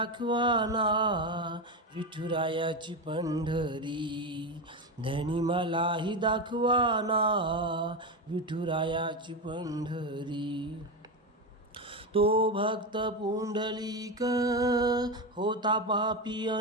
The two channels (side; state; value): both; normal; correlation 0.15